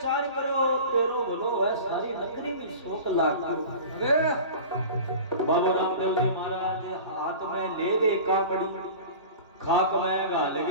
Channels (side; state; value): both; inverted; correlation -0.37